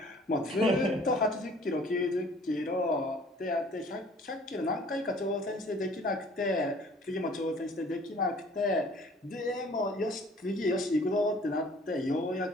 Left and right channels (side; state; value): both; normal; correlation 0.53